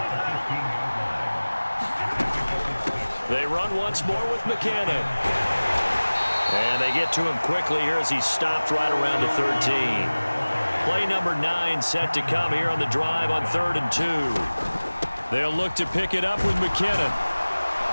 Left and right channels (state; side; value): inverted; both; correlation -1.00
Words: They run once more with McKinnon. And they get to him quickly here as he's stopped right around the 13. Play number 9 set to come here on the drive on 3rd and 2. They'll look to pick it up with McKinnon.